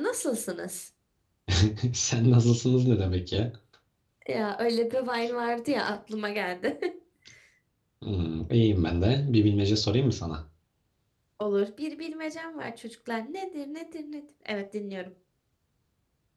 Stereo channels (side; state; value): both; identical; correlation 1.00